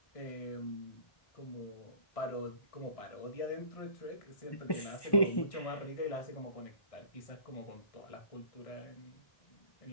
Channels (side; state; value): right; late; 1.1 ms